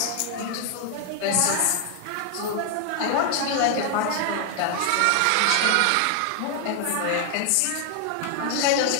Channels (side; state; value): both; different; correlation 0.00